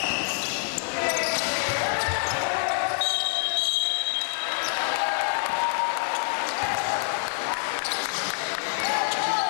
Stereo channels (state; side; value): silent; right; 61 dB below the other